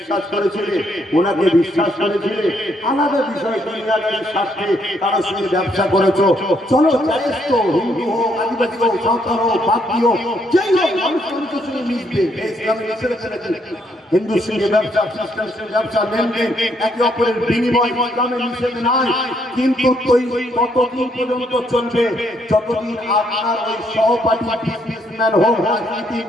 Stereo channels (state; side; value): normal; both; correlation 0.72